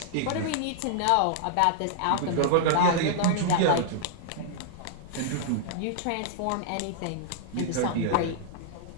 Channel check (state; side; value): different; both; correlation -0.01